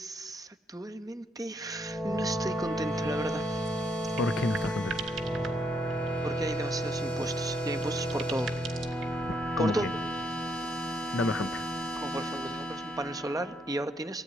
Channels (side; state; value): both; normal; correlation 0.74